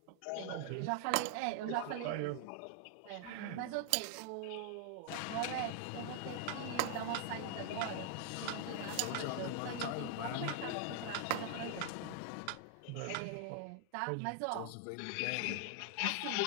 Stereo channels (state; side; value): different; both; correlation 0.00